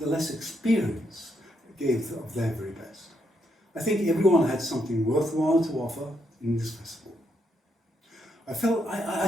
less experienced gave of their very best. I think everyone had something worthwhile to offer in this festival. I felt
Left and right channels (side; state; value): both; normal; correlation 0.77